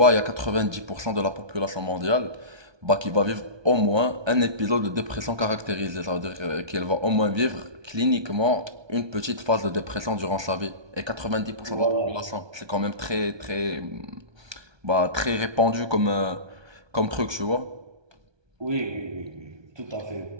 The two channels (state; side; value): late; left; 1.2 ms